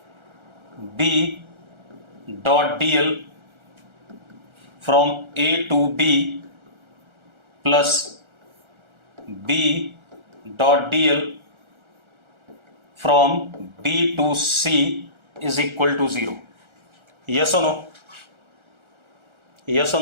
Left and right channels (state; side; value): late; left; 1.4 ms